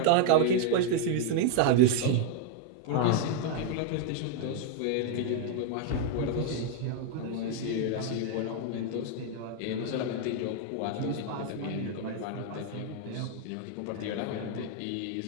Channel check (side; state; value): both; different; correlation 0.00